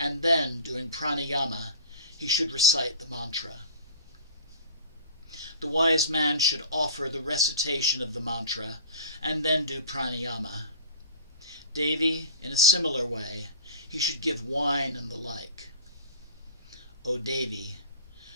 then doing pranayama, he should recite the mantra. The wise man should offer the recitation of the mantra, and then do pranayama. Devi, in a similar way, he should give wine and the like. O Devi,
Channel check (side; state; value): both; inverted; correlation -0.38